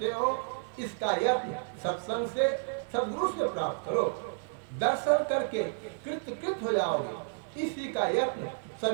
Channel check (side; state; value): left; silent; digital silence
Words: हो। इसका यत्न सत्संग से, सद्गुरु से प्राप्त करो। दर्शन करके कृत हो जाओगे। इसी का यत्न